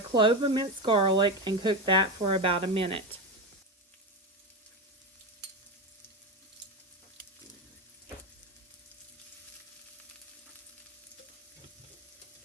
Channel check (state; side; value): normal; both; correlation 0.16